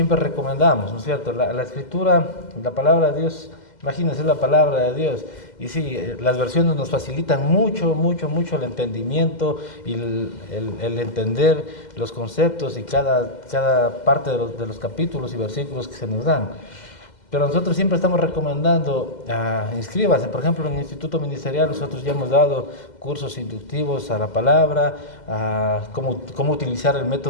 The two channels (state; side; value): late; right; 2.0 ms